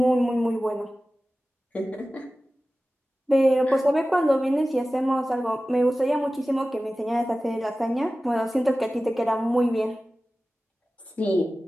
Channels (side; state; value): both; normal; correlation 0.96